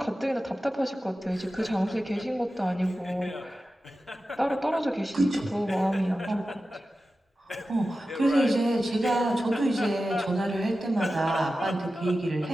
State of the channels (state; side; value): normal; both; correlation 0.93